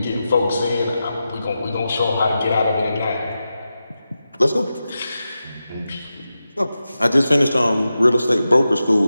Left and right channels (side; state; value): both; inverted; correlation -0.91